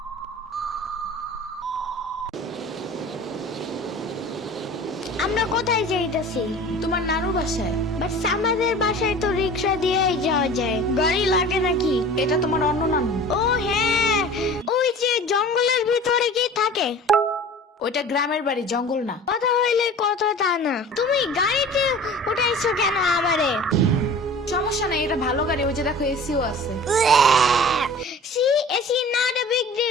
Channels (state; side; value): normal; both; correlation 0.41